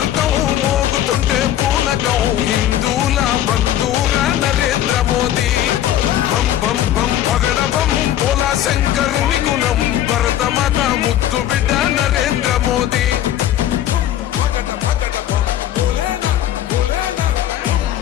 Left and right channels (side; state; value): right; quieter; 12.0 dB